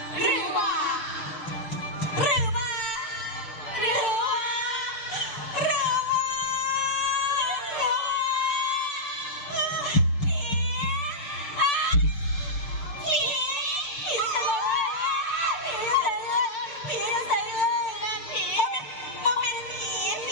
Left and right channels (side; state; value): right; late; 6.7 ms